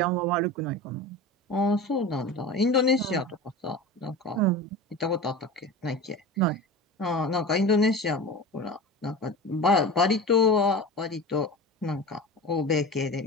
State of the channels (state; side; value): normal; both; correlation 0.31